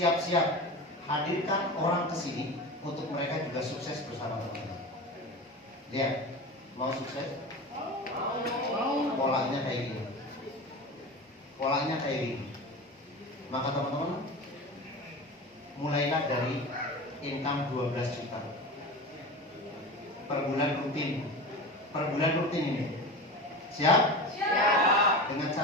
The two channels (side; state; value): both; normal; correlation 0.29